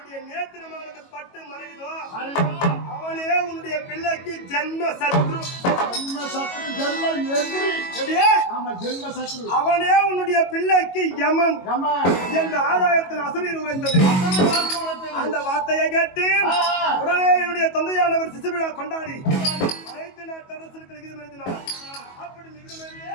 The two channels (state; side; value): late; right; 22 ms